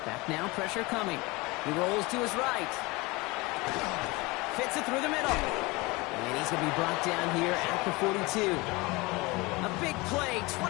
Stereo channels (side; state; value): right; quieter; 24.0 dB